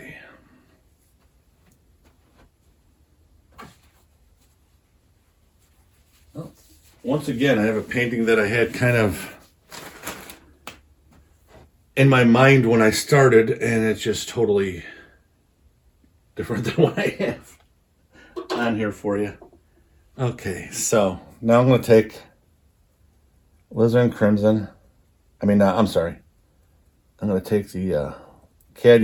Well, once again, I have a painting that I had kind of in my mind when I started, and it's just totally different than what I have on here for you. Okay, so now I'm going to take Alizarin Crimson. I'm sorry. I'm going to take the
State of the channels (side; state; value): both; identical; correlation 1.00